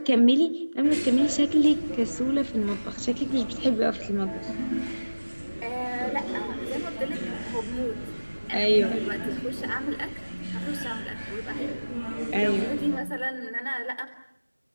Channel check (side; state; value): both; inverted; correlation -1.00